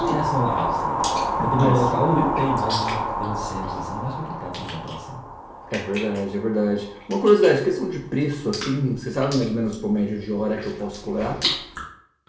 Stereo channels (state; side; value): identical; both; correlation 1.00